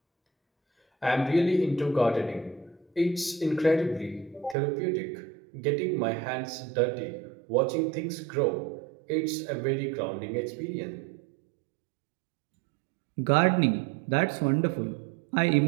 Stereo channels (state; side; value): drops out; left; at 4.5 s